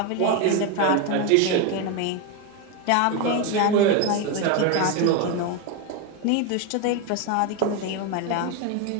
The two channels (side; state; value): both; different; correlation 0.02